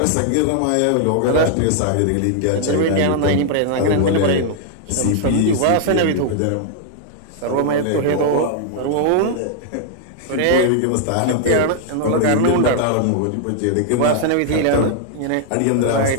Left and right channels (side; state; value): both; different; correlation 0.00